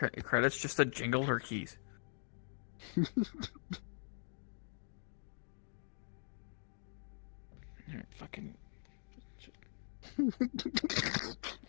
credits just to jingle her keys. Alright, fucking.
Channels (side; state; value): right; silent; digital silence